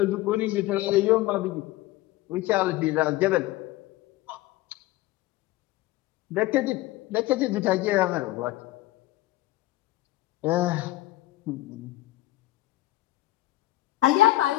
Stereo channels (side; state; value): right; quieter; 16.9 dB